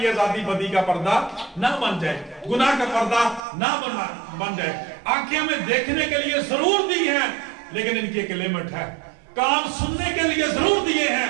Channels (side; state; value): left; drops out; at 3.4 s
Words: ये आजादी बदी का पर्दा ना बन जाए, गुनाह का पर्दा ना बन जाए। आंखें हमें देखने के लिए जरूर दी है, लेकिन इनकी एक लिमिट है। कान सुनने के लिए जरूर दिए